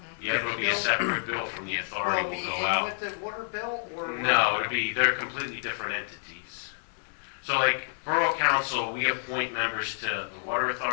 Yeah, it'll be a separate bill from the Will authority it will be go in out. with the water bill, or? No, it'll be, they're completely different entities. So like Borough Council, we appoint members to the Water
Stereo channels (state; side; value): silent; right; digital silence